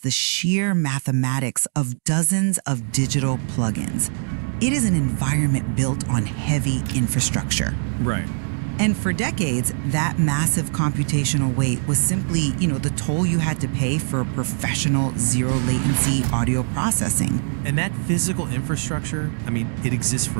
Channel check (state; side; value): silent; left; digital silence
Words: sheer mathematics of dozens of digital plugins. It is an environment built on heavy infrastructure. Right. And for decades, that massive computational weight was simply, the toll you had to pay for professional zero-latency audio processing. And that physical infrastructure, it exists